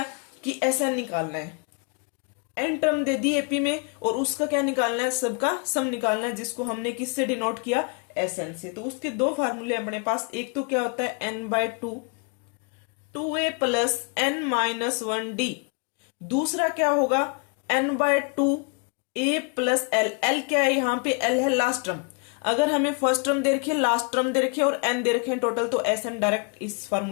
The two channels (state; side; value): quieter; right; 36.6 dB